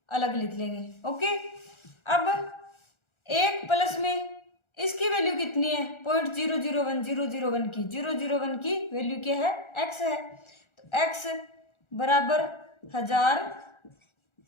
अलग लिख लेंगे, ओके। अब एक प्लस में इसकी वैल्यू कितनी है, 0.001 001 की, 001 की वैल्यू क्या है, x है, तो x बराबर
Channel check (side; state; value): right; late; 1.4 ms